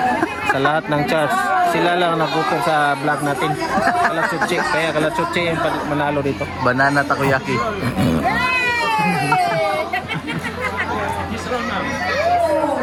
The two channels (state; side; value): identical; both; correlation 1.00